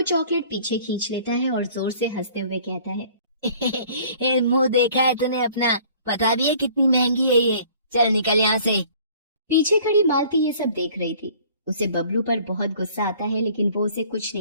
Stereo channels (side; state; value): both; inverted; correlation -0.53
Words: चॉकलेट पीछे खींच लेता है और जोर से हंसते हुए कहता है, मुंह देखा है तूने अपना? पता भी है कितनी महंगी है ये, चल निकल यहाँ से। पीछे खड़ी मालती ये सब देख रही थी। उसे बबलू पर बहुत गुस्सा आता है, लेकिन वो उसे कुछ